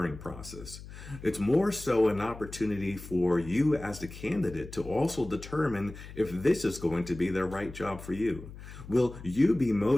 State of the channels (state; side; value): noise; left; hum, 14 dB below the sound